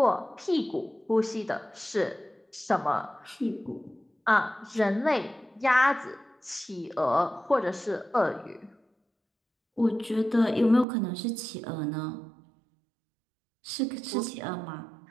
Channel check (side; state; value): left; drops out; at 10.9 s